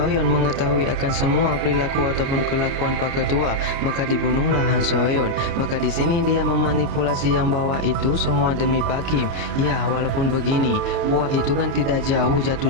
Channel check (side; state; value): left; late; 29 ms